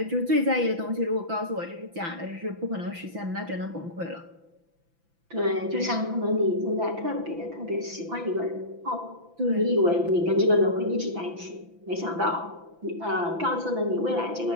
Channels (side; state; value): left; late; 5.9 ms